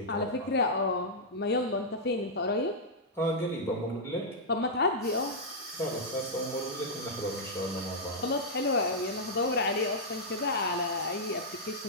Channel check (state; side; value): normal; both; correlation -0.08